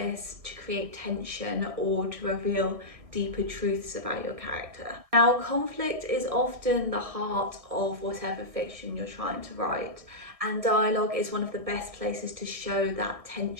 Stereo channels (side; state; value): left; late; 1.6 ms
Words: to create tension or to reveal deeper truths about your character. Now, conflict is often the heart of whatever fiction you're trying to write, and dialogue is one of the best places to show that